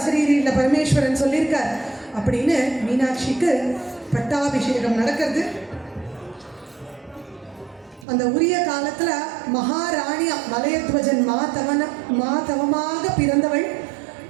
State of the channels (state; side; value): drops out; left; at 8.1 s